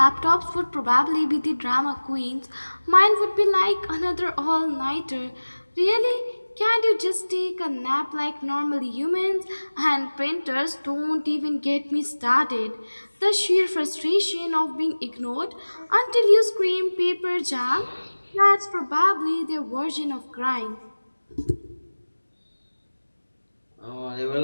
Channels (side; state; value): both; inverted; correlation -1.00